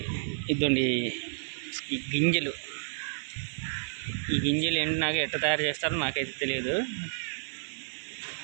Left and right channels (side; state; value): left; silent; 57 dB below the other